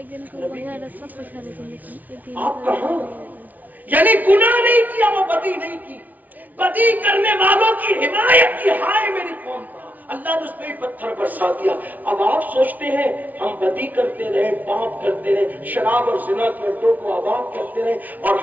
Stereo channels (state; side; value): late; left; 0.077 ms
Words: آپ کہاں؟ یعنی گناہ نہیں کیا، وہ بدی نہیں کی، بدی کرنے والوں کی حمایت کی، ہائے میری قوم کا، اللہ نے اس پہ بھی پتھر برسا دیا۔ اب آپ سوچتے ہیں ہم بدی کرتے رہے، پاپ کرتے رہے، شراب اور زنا کے اڈوں کو آباد کرتے رہے اور